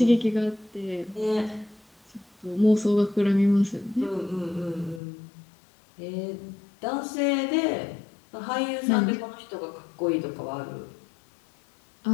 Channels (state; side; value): drops out; right; at 5.0 s